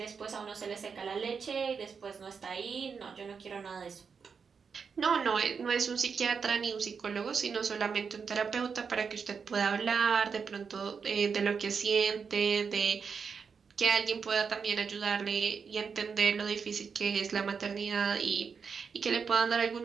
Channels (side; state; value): left; quieter; 5.9 dB